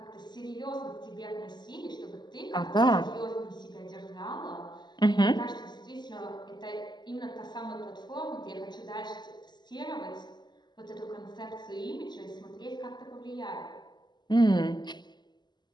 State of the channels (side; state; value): right; late; 0.21 ms